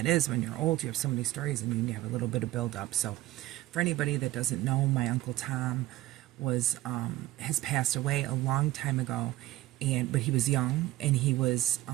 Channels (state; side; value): quieter; left; 16.4 dB